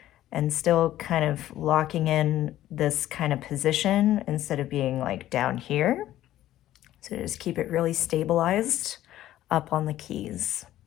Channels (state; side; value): quieter; right; 13.6 dB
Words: and still kind of locking in this kind of position instead of being like down here. So just keep it really stabilized up on the keys.